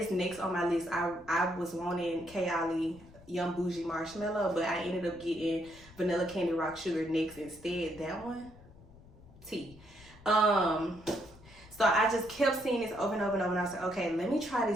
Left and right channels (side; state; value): left; noise; rumble, 22 dB below the sound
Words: next on my list. I was wanting Kayali Young Bougie Marshmallow, but I ended up getting Vanilla Candy Rock Sugar next instead. That one, T. So I just kept seeing this over and over and over, and I was like, okay, let me try